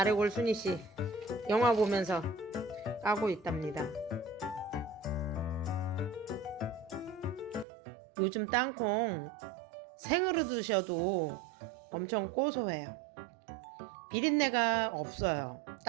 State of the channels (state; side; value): drops out; left; at 7.7 s